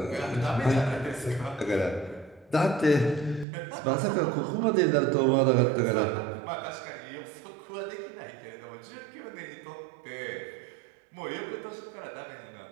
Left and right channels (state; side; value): drops out; left; at 3.5 s